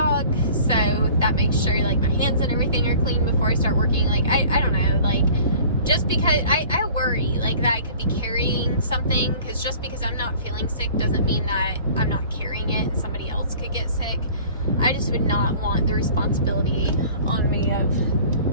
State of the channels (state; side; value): inverted; both; correlation -0.47